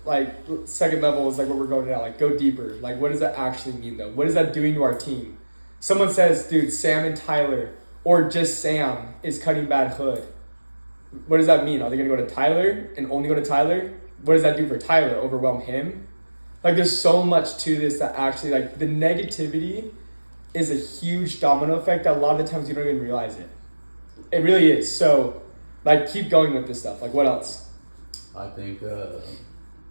Like second level is like what we're going at. Like go deeper. Like what does that actually mean though? What is that doing to our team? Someone says, dude, Sam and Tyler, or just Sam is cutting bad hood. What does that mean? Are they gonna go to Tyler and only go to Tyler? What does that do for Tyler? Overwhelm him? Like there's so much to this that actually like the negativity is a huge domino effect that a lot of the times you don't even realize it. It really is. So like keep going with this stuff. Like what else? I think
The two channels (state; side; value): inverted; both; correlation -1.00